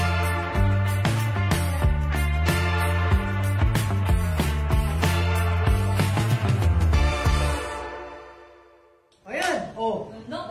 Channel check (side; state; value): both; identical; correlation 1.00